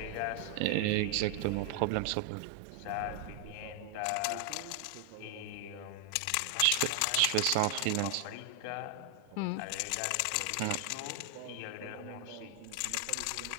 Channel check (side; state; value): both; different; correlation 0.00